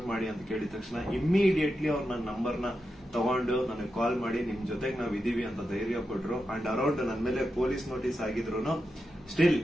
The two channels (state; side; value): normal; both; correlation 0.88